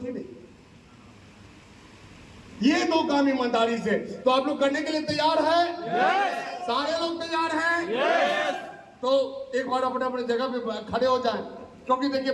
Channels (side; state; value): both; identical; correlation 1.00